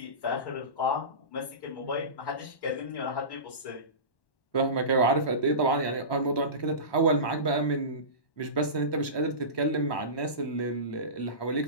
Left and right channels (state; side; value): late; right; 1.1 ms